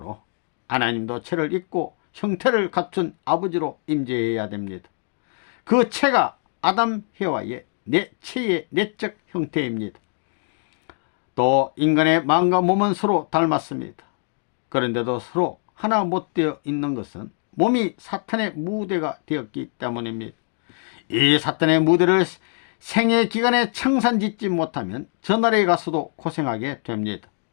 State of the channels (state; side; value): silent; right; 57 dB below the other